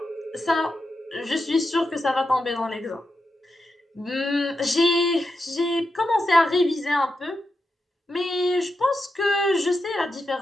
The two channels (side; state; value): both; normal; correlation 0.87